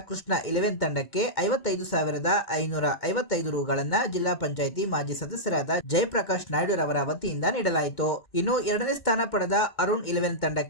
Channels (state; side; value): late; right; 2.1 ms